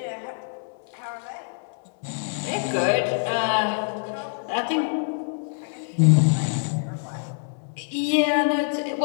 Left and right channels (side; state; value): right; silent; digital silence